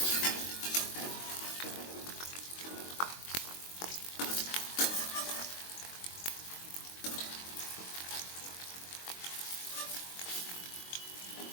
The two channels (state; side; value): late; right; 22 ms